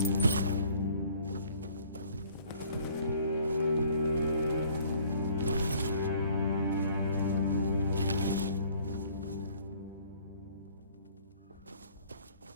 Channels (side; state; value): both; inverted; correlation -0.57